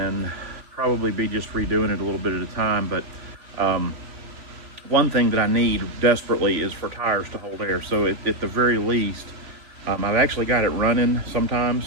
probably be just redoing it a little bit at a time. But one thing that I need desperately is for tires to hold air. So at the very least, I've actually got it running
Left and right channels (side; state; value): left; late; 3.6 ms